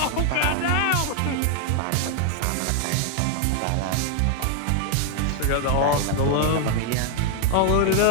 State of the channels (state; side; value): different; both; correlation 0.00